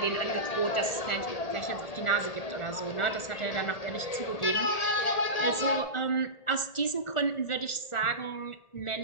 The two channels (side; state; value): right; late; 1.4 ms